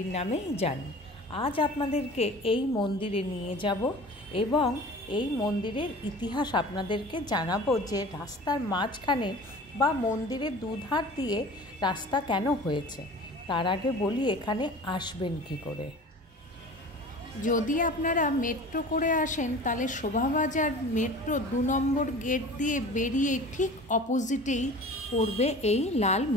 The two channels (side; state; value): both; normal; correlation 0.40